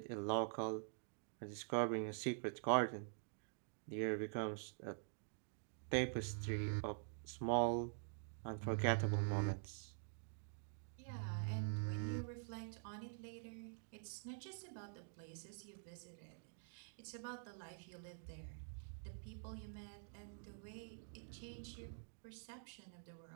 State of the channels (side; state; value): left; silent; digital silence